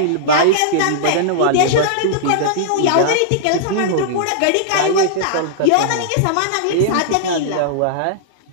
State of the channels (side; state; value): both; different; correlation -0.02